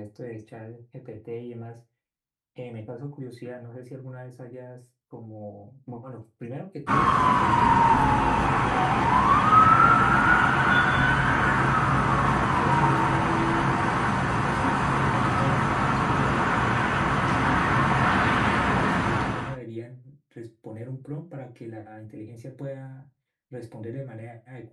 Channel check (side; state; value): both; identical; correlation 1.00